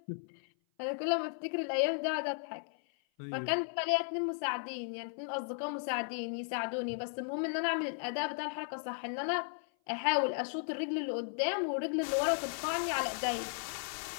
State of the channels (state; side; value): silent; right; 54 dB below the other